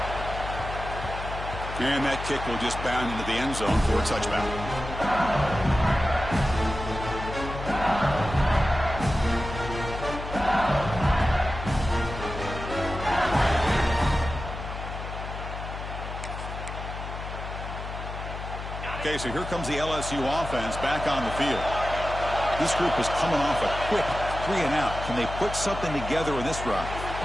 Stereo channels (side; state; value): left; noise; hum, 8 dB below the sound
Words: And that kick will just bound into the end zone for a touchback. Okay, so here comes the LSU offense back on the field. This group is coming off a quick 3-and-out. Can they put something together in this drive?